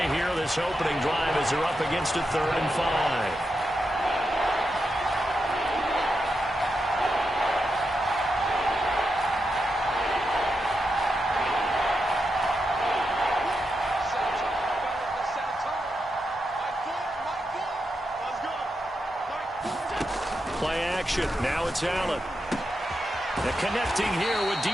here this opening drive as they're up against a 3rd and 5. Play action. Now it's Allen. And connecting here with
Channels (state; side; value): normal; both; correlation 0.86